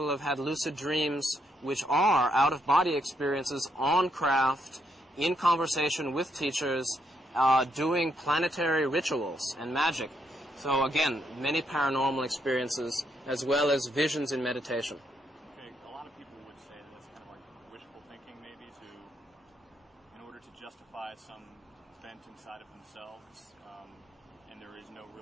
have had lucid dreams, which are out-of-body experiences on craft, in conversation with teachers, doing planetary rituals and magic. So again, many paranormal experiences, as well as visions in meditation. Okay, a lot of people would say that that's kind of like wishful thinking, maybe, in order to justify some event inside of themselves, and there is no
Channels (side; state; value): both; normal; correlation 0.76